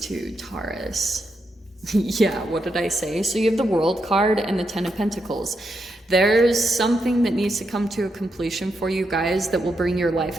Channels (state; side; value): normal; both; correlation 0.83